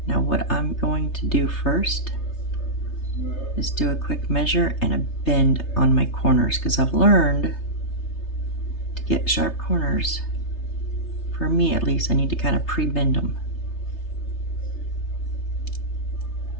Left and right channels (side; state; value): right; late; 3.3 ms